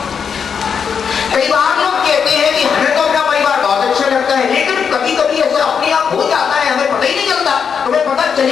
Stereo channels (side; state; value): right; quieter; 6.7 dB